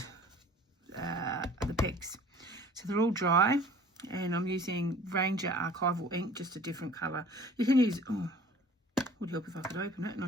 the pegs. So they're all dry, and I'm using Ranger Archival ink, just a different colour. You can use, would help if I could open it, and I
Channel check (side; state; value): both; normal; correlation 0.49